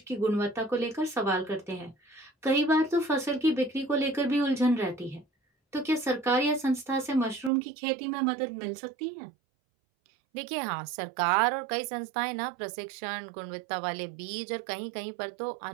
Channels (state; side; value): drops out; left; at 7.5 s